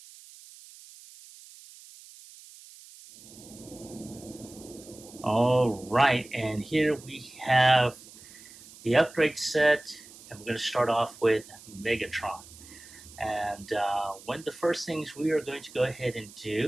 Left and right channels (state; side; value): noise; right; hiss, 20 dB below the sound